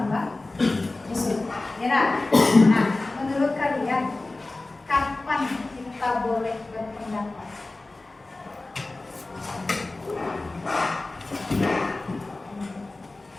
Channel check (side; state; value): right; quieter; 3.1 dB